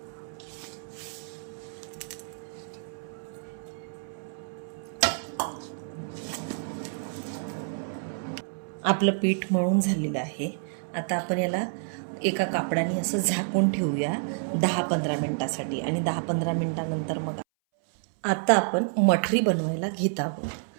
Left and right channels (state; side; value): silent; left; 59 dB below the other